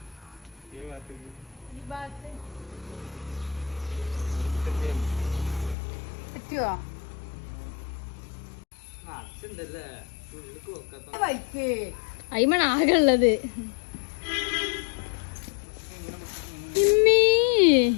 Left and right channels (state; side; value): drops out; right; at 5.8 s